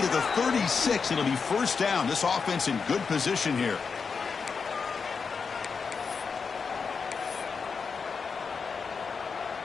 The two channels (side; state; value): right; quieter; 5.4 dB